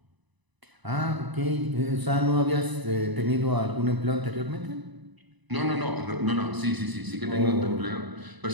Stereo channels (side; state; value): left; late; 1.0 ms